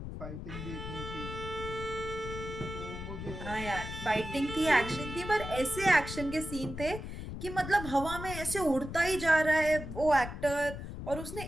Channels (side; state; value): left; noise; rumble, 8 dB below the sound